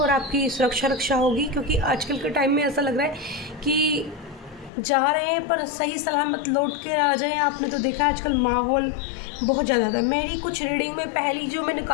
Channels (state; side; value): drops out; right; at 4.7 s